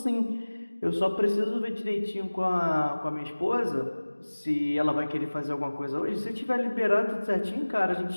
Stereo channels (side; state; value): both; inverted; correlation -1.00